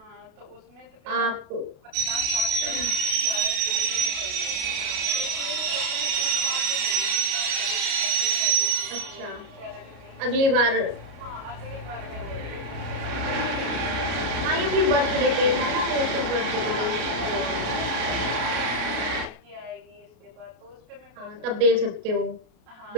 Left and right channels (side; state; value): left; late; 33 ms